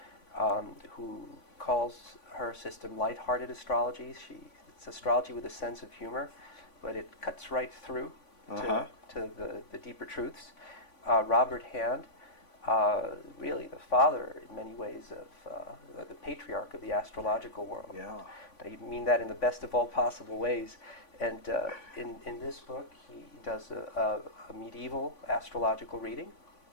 who calls her system lighthearted astrology. It's astrology with a sense of humor, but it cuts right through to the deeper truths. Robert Hand, really the father in many ways of the patriarch of the astrological world. Yeah. I mean that in the best of all possible ways. And in this book, he does a medieval astrological reading.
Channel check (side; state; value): right; late; 3.5 ms